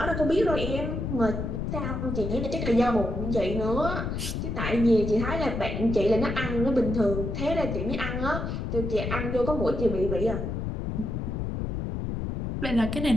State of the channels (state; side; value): noise; left; rumble, 3 dB below the sound